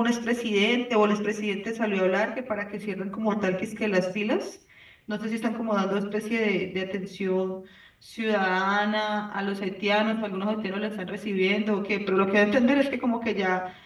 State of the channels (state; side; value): identical; both; correlation 1.00